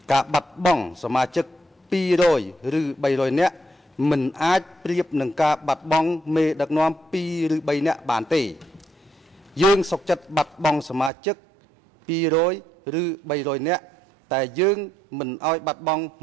ការបាត់បង់សមាជិក200ឬ300នាក់មិនអាចប្រៀបនឹងការបាត់បង់មេដឹកនាំ2ឬ3នាក់បានទេយើងសុខចិត្តបាត់បង់សមាជិក200ឬ300នាក់តែយើងមិនអោយបាត់បង់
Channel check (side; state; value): left; drops out; at 11.1 s